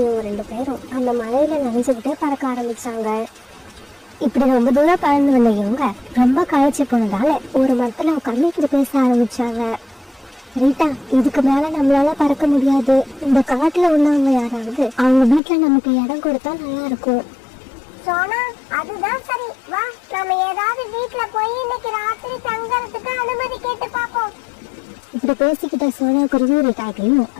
2 பேரும் அந்த மழையில நனைஞ்சுக்கிட்டே பறக்க ஆரம்பிச்சாங்க. இப்படி ரொம்ப தூரம் பறந்து வந்த இவங்க ரொம்ப களைச்சு போனதால ஒரு மரத்துல உட்கார்ந்து இப்படி பேச ஆரம்பிச்சாங்க. ரீட்டா, இதுக்கு மேல நம்மளால பறக்க முடியாது. இந்த காட்டுல உள்ளவங்க யாராவது அவங்க வீட்டுல நமக்கு இடம் கொடுத்தா நல்லா இருக்கும். சோனா, அதுதான் சரி. வா, நாம ஏதாவது வீட்ல போய் இன்னைக்கு ராத்திரி தங்கறதுக்கு அனுமதி கேட்டு பாப்போம். இப்படி பேசிக்கிட்ட சோனா குருவி ரீட்டாக்கையும்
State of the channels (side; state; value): right; drops out; at 15.4 s